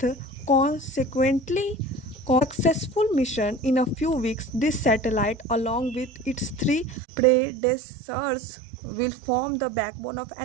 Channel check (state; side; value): drops out; left; at 7.0 s